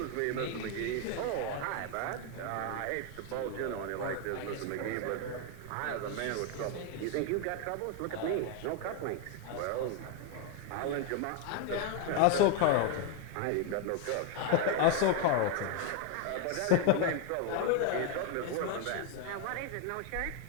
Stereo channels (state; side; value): different; both; correlation 0.01